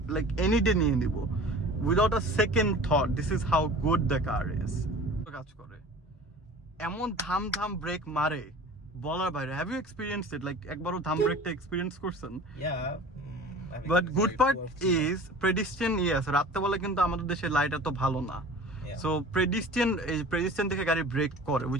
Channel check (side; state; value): both; normal; correlation 0.42